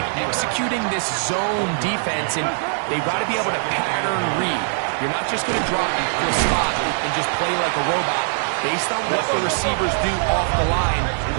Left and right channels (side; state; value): left; silent; digital silence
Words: executing this zone defense, and they've got to be able to pattern read. You're not just going to drop into a spot and just play like a robot. Based on what the receivers do off the line,